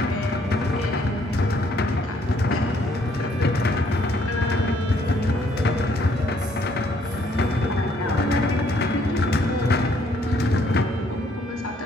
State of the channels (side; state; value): both; normal; correlation 0.66